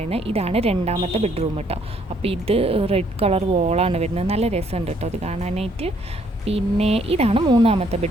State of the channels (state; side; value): normal; both; correlation 0.67